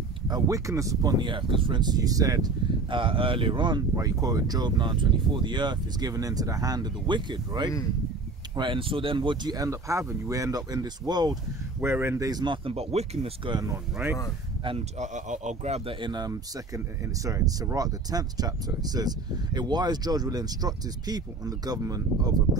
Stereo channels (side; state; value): left; quieter; 3.7 dB